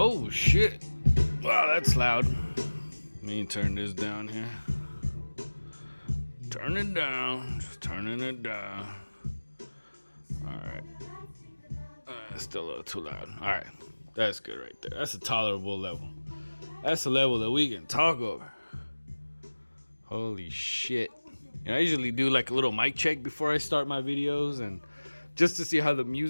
Oh shit. Wow, that's loud. Let me turn this down here. Turn it down. Just turning it down. Alright. Still a little too loud. Alright. That's good right there. That's a tolerable level. That's a level that we can talk over. Holy shit. And I usually do like a little mic check before I start my videos, and just to see how the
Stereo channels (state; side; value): inverted; both; correlation -1.00